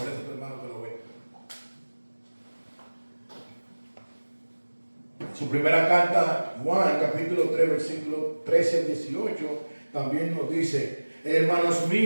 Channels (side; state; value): both; inverted; correlation -1.00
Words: a tu hermano que lo ve? En su primera carta, Juan, capítulo 3, versículo 13 al 18, también nos dice: hermanos